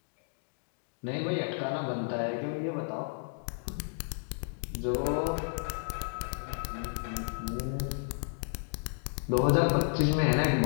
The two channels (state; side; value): silent; right; digital silence